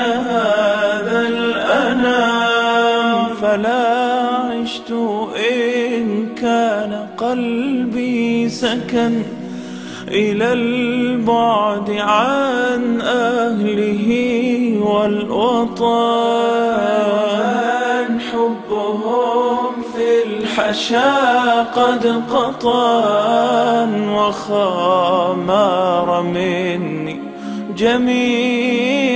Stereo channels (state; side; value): identical; both; correlation 1.00